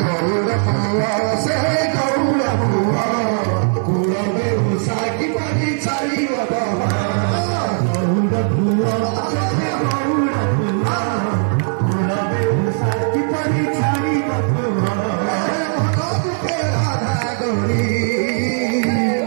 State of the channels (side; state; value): left; silent; 66 dB below the other